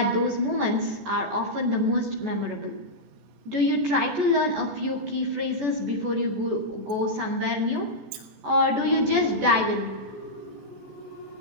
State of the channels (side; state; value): left; late; 14 ms